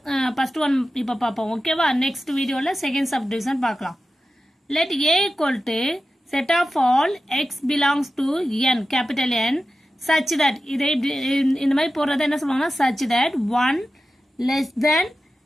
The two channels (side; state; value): both; normal; correlation 0.93